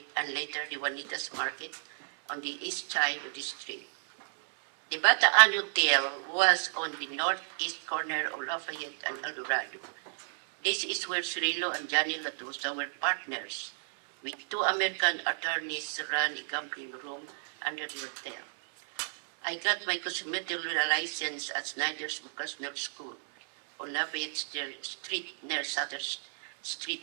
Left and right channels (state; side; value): silent; left; 57 dB below the other